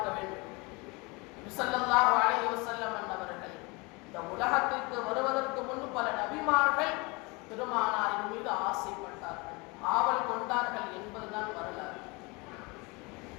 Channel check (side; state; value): right; quieter; 27.0 dB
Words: வேண்டும். ஸல்லல்லாஹு அலைஹி வஸல்லம் அவர்கள் இந்த உலகத்திற்கு வருவதற்கு முன்பு பல நபிமார்கள் பெருமானாரின் மீது ஆசைப்பட்டார்கள், ஆவல் கொண்டார்கள் என்பதுதான் வரலாறு.